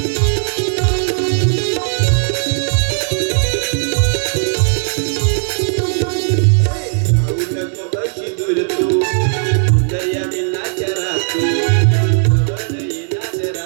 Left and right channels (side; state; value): left; silent; 69 dB below the other